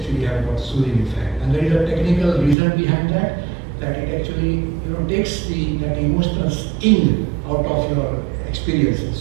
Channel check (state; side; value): drops out; left; at 2.6 s